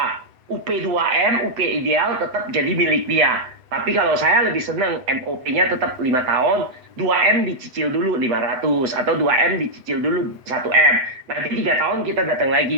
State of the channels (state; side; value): late; left; 8.0 ms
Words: UP2M, UP ideal tetap jadi milik dia. Tapi kalau saya lebih senang MOP-nya tetap 5 tahun, 2M dicicil dulu 500 atau 2M dicicil dulu 1M. Nanti 3 tahun kita datang